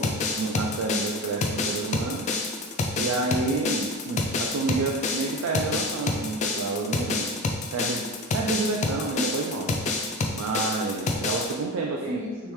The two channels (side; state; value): both; normal; correlation 0.30